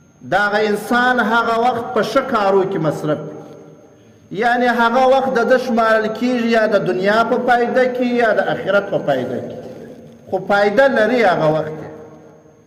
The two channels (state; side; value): identical; both; correlation 1.00